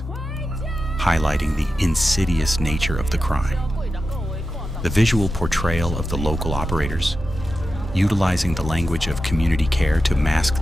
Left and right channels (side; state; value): both; normal; correlation 0.91